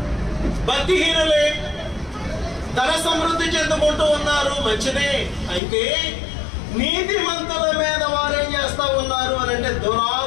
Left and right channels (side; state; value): right; drops out; at 5.6 s